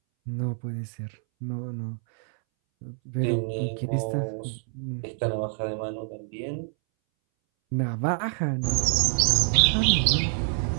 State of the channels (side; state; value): left; silent; 61 dB below the other